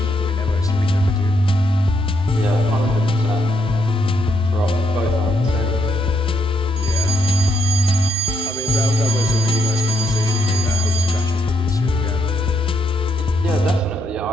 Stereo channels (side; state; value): both; normal; correlation 0.77